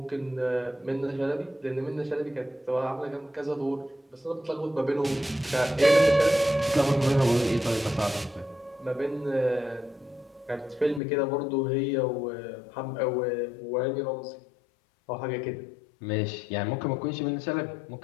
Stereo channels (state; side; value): drops out; right; at 11.0 s